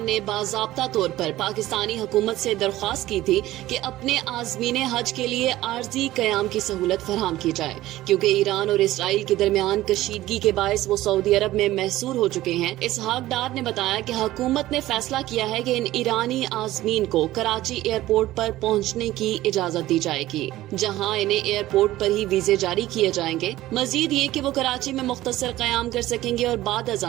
نے باضابطہ طور پر پاکستانی حکومت سے درخواست کی تھی کہ اپنے عازمین حج کے لیے عارضی قیام کی سہولت فراہم کی جائے کیونکہ ایران اور اسرائیل کے درمیان کشیدگی کے باعث وہ سعودی عرب میں محصور ہو چکے ہیں۔ اسحاق ڈار نے بتایا کہ حکومت نے فیصلہ کیا ہے کہ ان ایرانی عازمین کو کراچی ایئرپورٹ پر پہنچنے کی اجازت دی جائے گی جہاں انہیں ایئرپورٹ پر ہی ویزے جاری کیے جائیں گے۔ مزید یہ کہ وہ کراچی میں مختصر قیام کر سکیں گے اور بعد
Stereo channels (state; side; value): quieter; left; 15.7 dB